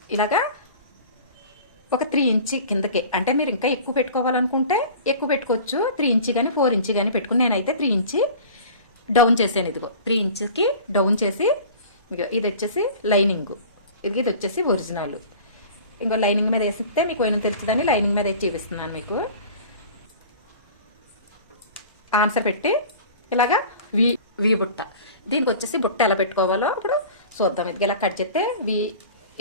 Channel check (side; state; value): both; inverted; correlation -0.41